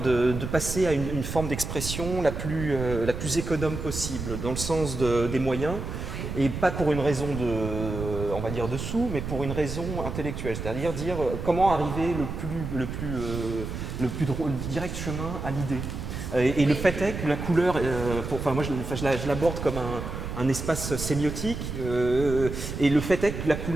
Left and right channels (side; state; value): right; noise; rumble, 6 dB below the sound